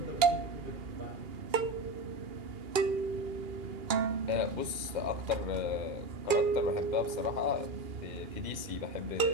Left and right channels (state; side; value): late; left; 2.4 ms